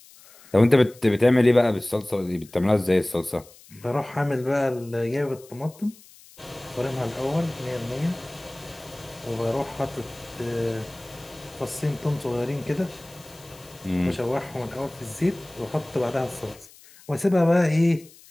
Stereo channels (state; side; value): noise; left; hiss, 23 dB below the sound